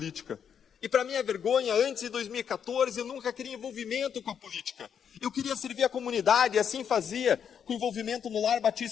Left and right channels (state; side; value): quieter; right; 7.9 dB